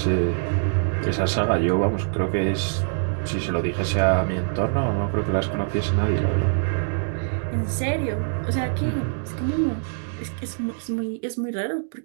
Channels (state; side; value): silent; left; digital silence